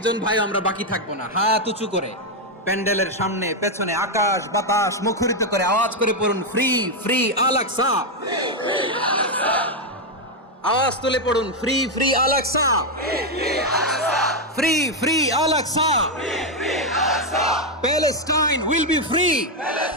ভাই আমরা বাকি থাকবো না, হাত উঁচু করে প্যান্ডেলের সামনে পেছনে আকাশ বাতাস মুখরিত করে আওয়াজ করে পড়ুন, ফ্রি ফ্রি আল আকসা। আওয়াজ তুলে পড়ুন, free free Al Aqsa, free free Al Aqsa. Palestine will be free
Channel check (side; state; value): both; normal; correlation 0.03